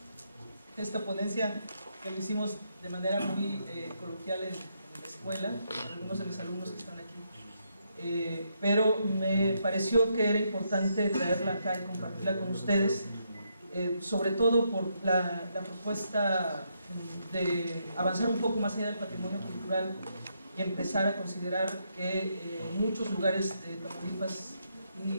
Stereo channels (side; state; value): both; inverted; correlation -0.78